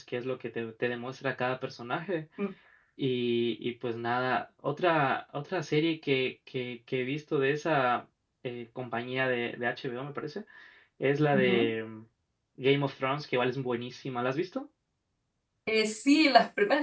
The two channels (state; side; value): identical; both; correlation 1.00